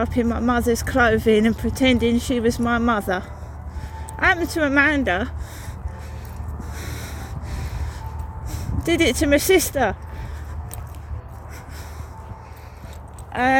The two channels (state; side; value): identical; both; correlation 1.00